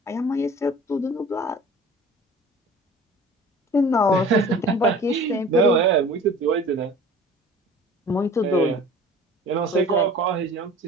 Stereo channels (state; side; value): normal; both; correlation 0.44